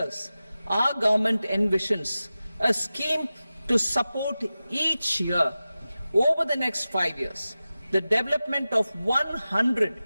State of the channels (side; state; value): both; inverted; correlation -0.95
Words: our government envisions a scheme to support each year over the next 5 years the development of 100